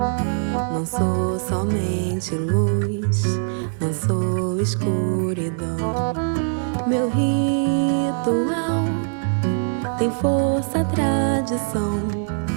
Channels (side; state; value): left; silent; digital silence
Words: Não sou somente luz, não sou escuridão. Meu ritual tem força, tradição.